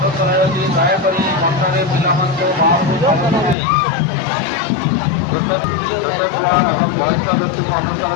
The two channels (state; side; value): drops out; right; at 3.6 s